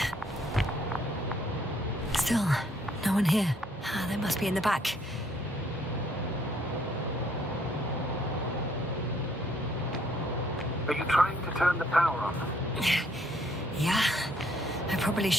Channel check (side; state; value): both; normal; correlation 0.66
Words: Still, no one here. They must be in the back. Are you trying to turn the power on? Yeah, I probably